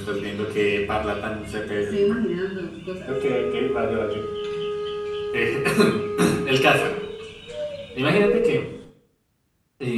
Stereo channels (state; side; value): identical; both; correlation 1.00